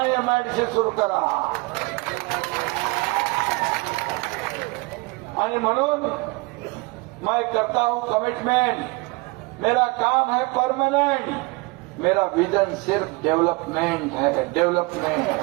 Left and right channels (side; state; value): left; quieter; 26.2 dB